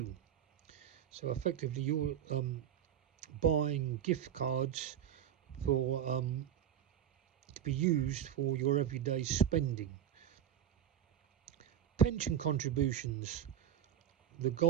So effectively you're buying gift cards for to be used for your everyday spending. Pension contributions, the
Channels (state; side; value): quieter; left; 10.2 dB